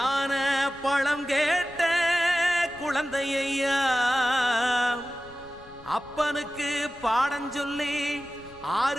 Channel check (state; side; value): noise; left; rumble, 22 dB below the sound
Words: பழம் கேட்ட குழந்தையா, அப்பனுக்கு பாடம் சொல்லி